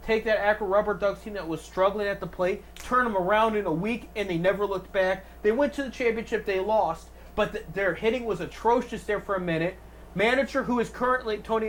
take that Akron Rubber Ducks team that was struggling at the plate, turn them around in a week, and they never looked back. They went to the championship, they lost, but their hitting was atrocious there for a minute. Manager who is currently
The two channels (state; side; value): identical; both; correlation 1.00